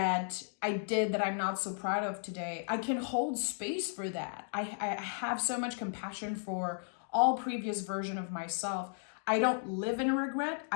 I did that I'm not so proud of today, I can hold space for that. I have so much compassion for all previous version of myself. I don't live in regret.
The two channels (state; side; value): silent; right; digital silence